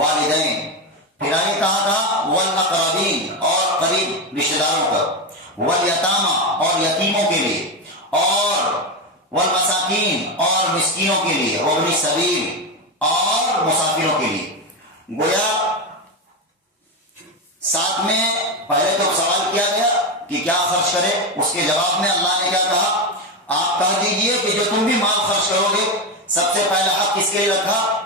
پھر آگے کہا والاقربین، اور قریب رشتہ داروں کا. والیتامى، اور یتیموں کے لیے. اور والمساکین، اور مسکینوں کے لیے. وابن السبیل، اور مسافروں کے لیے. گویا ساتھ میں پہلے تو سوال کیا گیا کہ کیا خرچ کرے، اس کے جواب میں اللہ نے کیا کہا؟ آپ کہہ دیجئے کہ جو تم بھی مال خرچ کرو گے سب سے پہلا حق کس کے لیے رکھا؟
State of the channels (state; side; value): normal; both; correlation 0.13